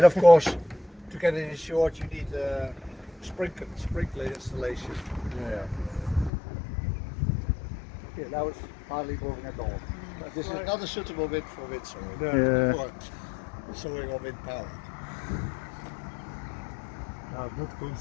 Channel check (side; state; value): right; drops out; at 6.3 s